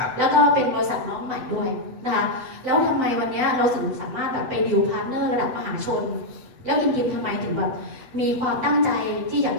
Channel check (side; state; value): left; late; 7.9 ms